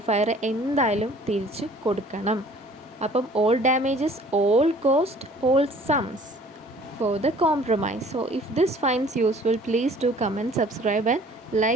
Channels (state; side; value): normal; both; correlation 0.52